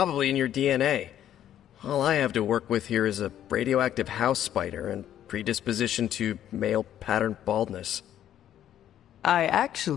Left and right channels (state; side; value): quieter; right; 11.1 dB